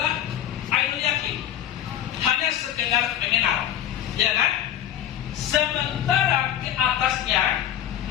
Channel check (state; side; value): quieter; right; 11.0 dB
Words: ainul yakin, hanya sekedar mengenal, ya kan? Sementara ke atasnya